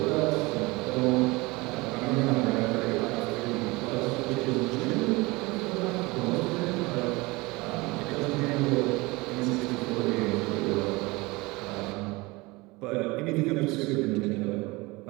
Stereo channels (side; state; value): left; quieter; 23.3 dB